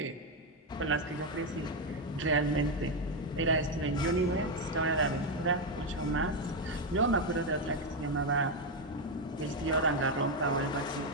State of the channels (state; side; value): normal; both; correlation 0.05